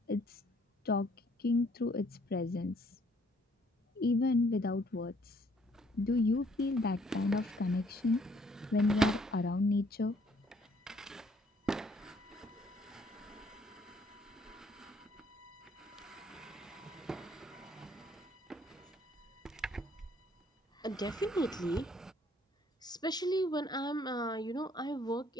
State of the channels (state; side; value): normal; both; correlation 0.64